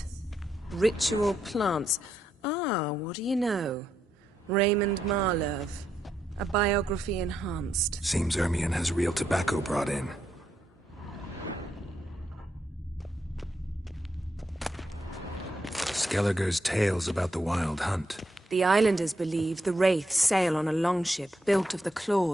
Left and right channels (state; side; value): normal; both; correlation 0.80